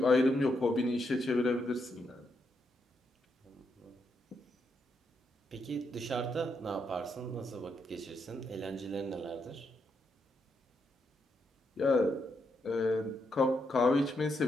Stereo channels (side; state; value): both; normal; correlation 0.80